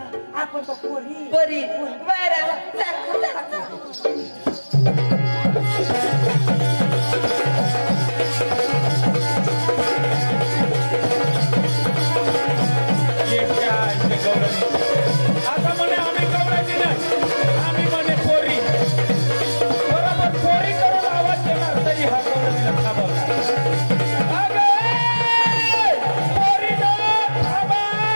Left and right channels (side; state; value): both; inverted; correlation -1.00